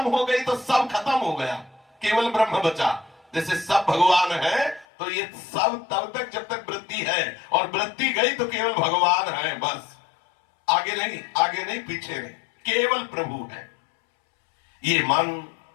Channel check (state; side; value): drops out; right; at 4.9 s